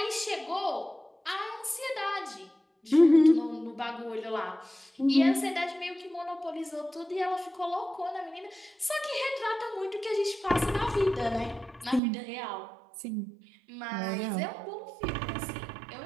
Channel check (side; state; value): left; drops out; at 12.0 s